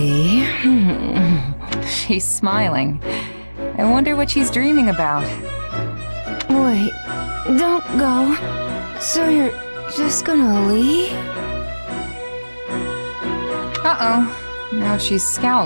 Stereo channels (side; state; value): both; inverted; correlation -1.00